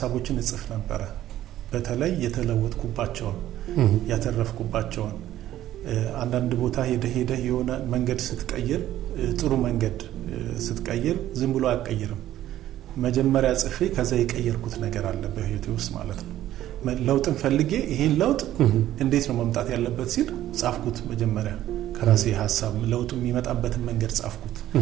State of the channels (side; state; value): left; quieter; 13.1 dB